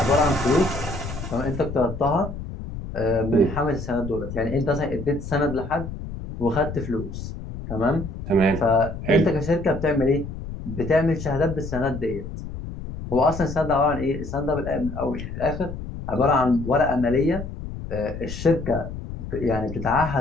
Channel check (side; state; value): left; noise; rumble, 9 dB below the sound